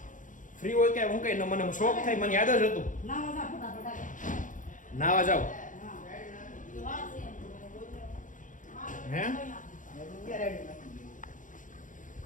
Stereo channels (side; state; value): right; late; 0.38 ms